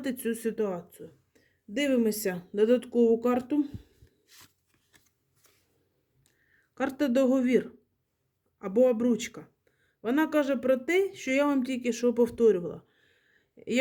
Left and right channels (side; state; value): both; identical; correlation 1.00